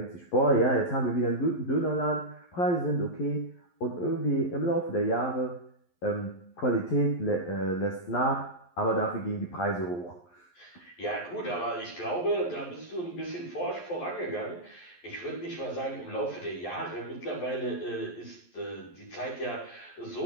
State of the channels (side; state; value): right; late; 11 ms